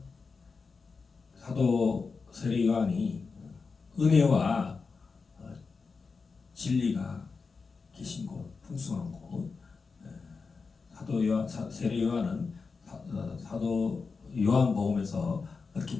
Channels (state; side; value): quieter; right; 4.7 dB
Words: 사도 세례 요한이 은혜와 진리가 계신 곳, 풍성한 곳. 세례 요한은 사도 요한복음에서 그렇게